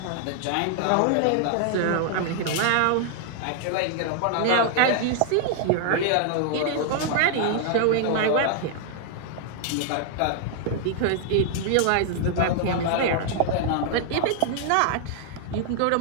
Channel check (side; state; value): both; different; correlation 0.00